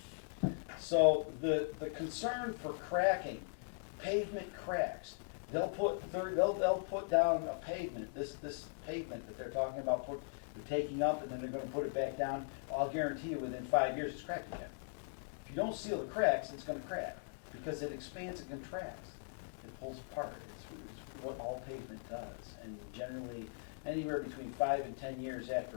So the concern for cracking, pavement cracks. They'll put down a pavement, this pavement that they're talking about they're taking up and then they're going to put it back down. I'll guarantee you within 5 years it's cracked again. If you don't seal the cracks, it's going to crack because it expands and contracts. It pulls apart. It's what all pavement does. And generally, anywhere between 5 and 10 years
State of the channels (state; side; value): silent; right; digital silence